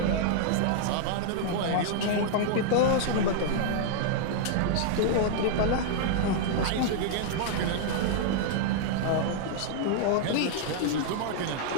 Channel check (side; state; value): both; different; correlation -0.01